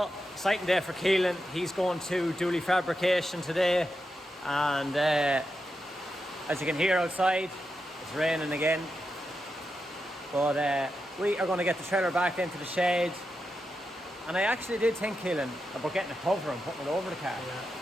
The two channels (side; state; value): both; normal; correlation 0.87